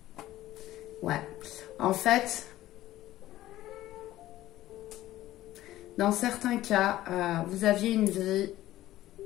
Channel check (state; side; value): quieter; right; 14.9 dB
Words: Ouais. En fait, dans certains cas, vous aviez une vie,